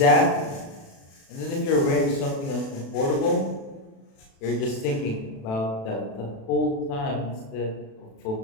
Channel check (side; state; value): right; late; 36 ms